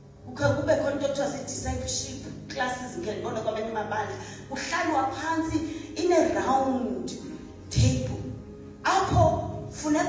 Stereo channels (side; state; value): both; identical; correlation 1.00